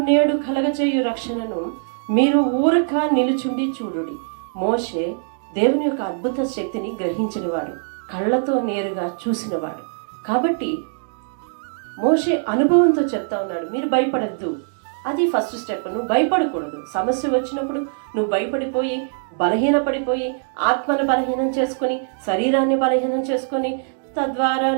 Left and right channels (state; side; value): silent; left; digital silence